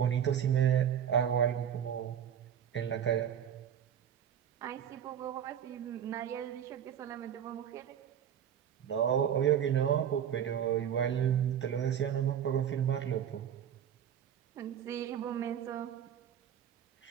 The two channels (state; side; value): quieter; left; 9.2 dB